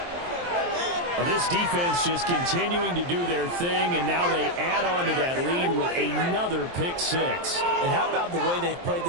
Well, this defense just continuing to do their thing, and now they add on to that lead with another pick 6. And how about the way they've played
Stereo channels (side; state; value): left; late; 23 ms